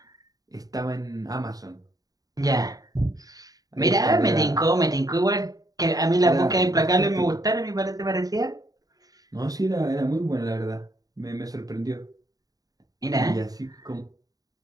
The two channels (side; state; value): left; late; 0.18 ms